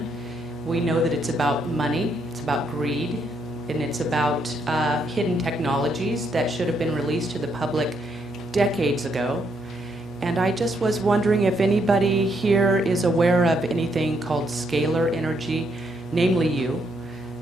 we know that it's about money, it's about greed, and it's about hidden technologies that should have been released to the public decades ago. And I just was wondering if anybody here is aware of anything called scalar energy, namely you,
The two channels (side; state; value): both; normal; correlation 0.75